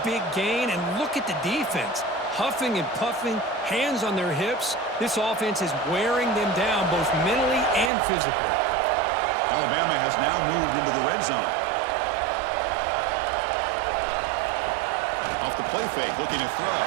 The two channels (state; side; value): drops out; left; at 7.9 s